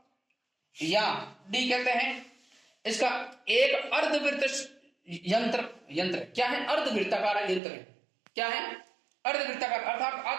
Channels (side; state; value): left; drops out; at 7.6 s